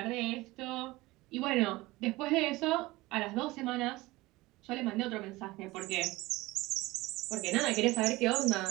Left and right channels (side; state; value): left; quieter; 20.2 dB